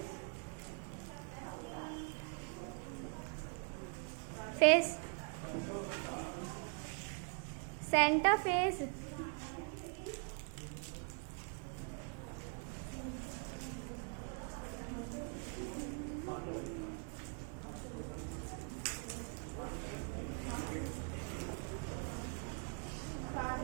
Face centre face.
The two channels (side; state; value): left; quieter; 39.4 dB